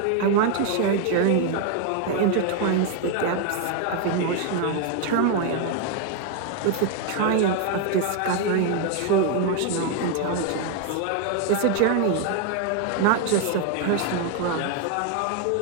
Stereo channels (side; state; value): both; different; correlation 0.00